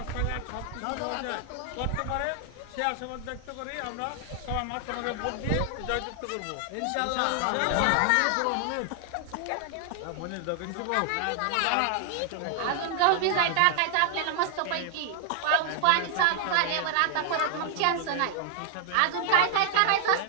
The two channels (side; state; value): both; different; correlation 0.00